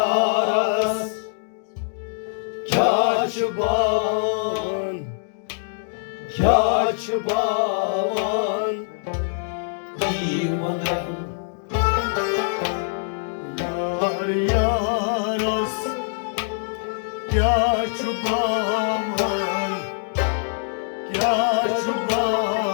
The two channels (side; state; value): right; silent; digital silence